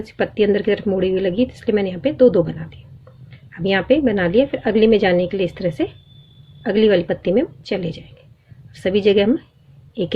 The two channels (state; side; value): identical; both; correlation 1.00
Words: सी पत्ती अंदर की तरफ मुड़ी हुई लगी, इसलिए मैंने यहाँ पे 2-2 बना दी। अब यहाँ पे बना लिया। फिर अगली में जाने के लिए इस तरह से अगली वाली पत्ती में चले जाएंगे। सभी जगह हम एक